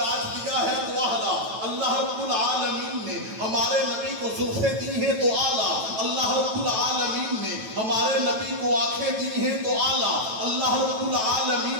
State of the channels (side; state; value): left; late; 9.1 ms